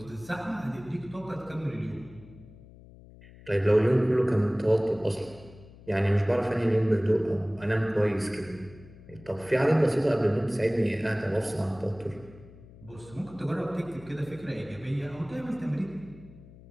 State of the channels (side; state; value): left; noise; hum, 20 dB below the sound